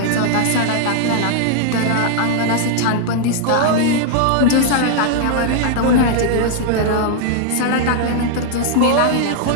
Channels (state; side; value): different; both; correlation -0.01